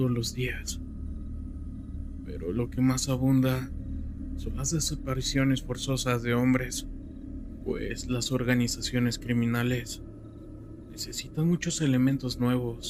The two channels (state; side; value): identical; both; correlation 1.00